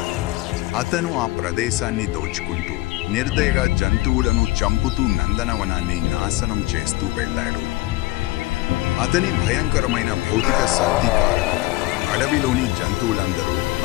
అతను ఆ ప్రదేశాన్ని దోచుకుంటూ నిర్దయగా జంతువులను చంపుతూ నందనవనాన్ని నాశనం చేస్తూ వెళ్ళాడు. అతని భయంకరమైన భౌతిక శక్తి కారణంగా అడవిలోని జంతువులందరూ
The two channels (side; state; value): right; quieter; 19.2 dB